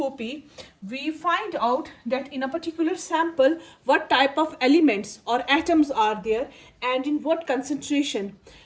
we find out that in a particular sample, what type of elements or atoms are there and in what concentration.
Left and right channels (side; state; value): both; identical; correlation 1.00